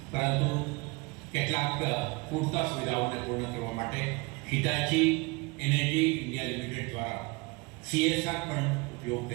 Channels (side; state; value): left; quieter; 26.6 dB